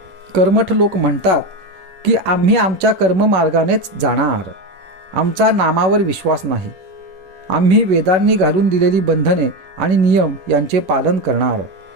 कर्मठ लोक म्हणतात की आम्ही आमच्या कर्ममार्गानेच जाणार, आमचा नामावर विश्वास नाही. आम्ही वेदांनी घालून दिलेली बंधने आणि नियम यांचे पालन करणार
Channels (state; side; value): late; left; 11 ms